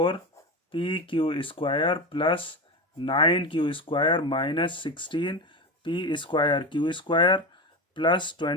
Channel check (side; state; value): both; normal; correlation 0.21